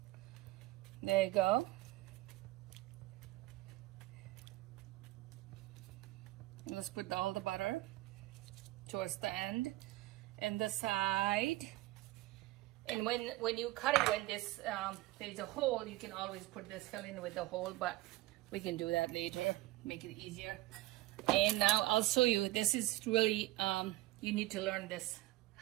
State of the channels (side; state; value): left; quieter; 18.5 dB